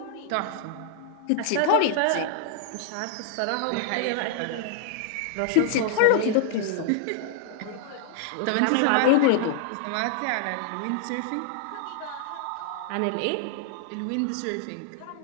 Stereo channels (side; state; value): both; different; correlation -0.01